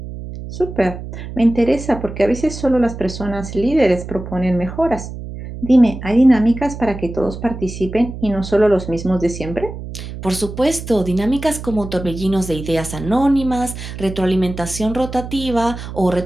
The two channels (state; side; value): noise; right; hum, 10 dB below the sound